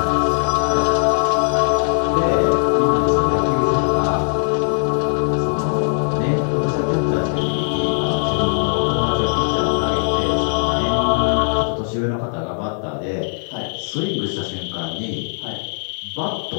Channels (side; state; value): right; silent; digital silence